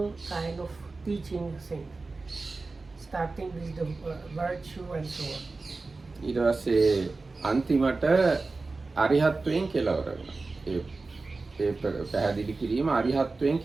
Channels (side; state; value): left; quieter; 3.7 dB